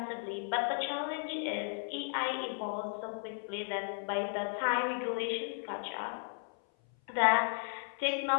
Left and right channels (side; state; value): right; silent; 54 dB below the other